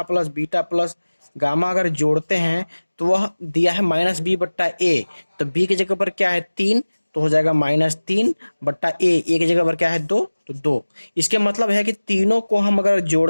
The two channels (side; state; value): both; inverted; correlation -1.00